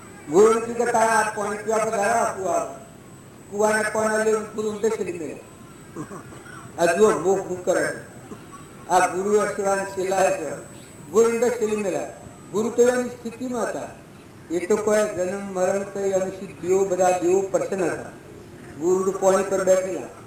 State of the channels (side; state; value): both; identical; correlation 1.00